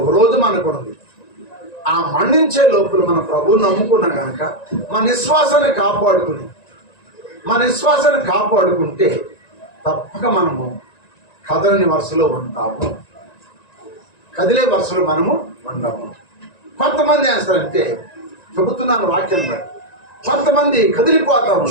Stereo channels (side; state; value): right; late; 1.9 ms